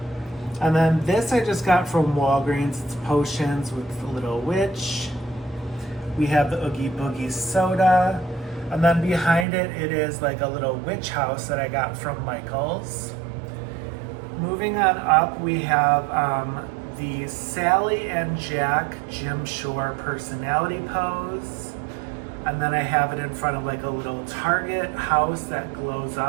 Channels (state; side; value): drops out; left; at 9.5 s